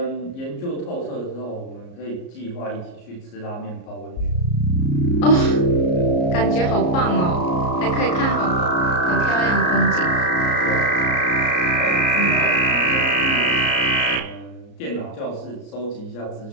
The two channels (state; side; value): late; right; 34 ms